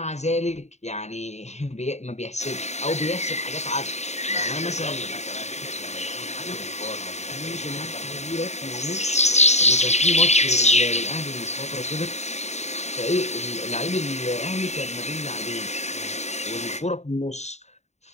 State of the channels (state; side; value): late; right; 0.32 ms